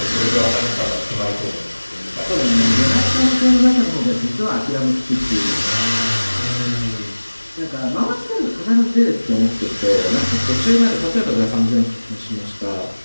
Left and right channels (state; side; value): inverted; both; correlation -1.00